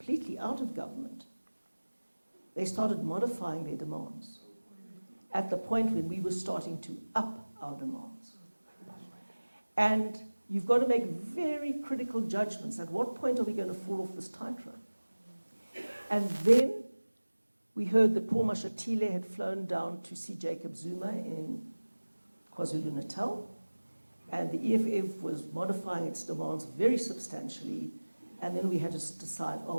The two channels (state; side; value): inverted; both; correlation -1.00